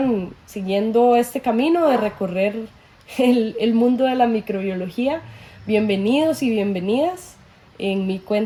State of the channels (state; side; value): identical; both; correlation 1.00